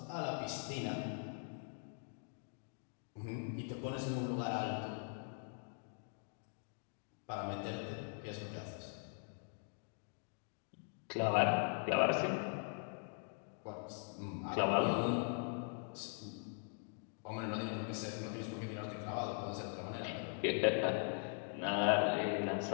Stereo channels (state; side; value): silent; right; 50 dB below the other